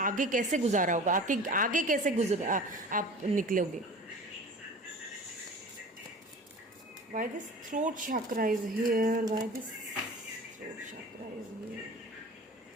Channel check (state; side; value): normal; both; correlation 0.39